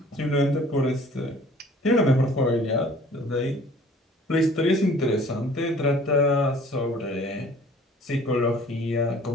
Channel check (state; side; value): normal; both; correlation 0.52